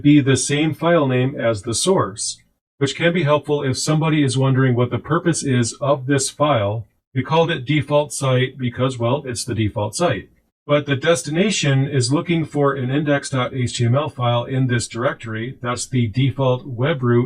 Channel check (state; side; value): identical; both; correlation 1.00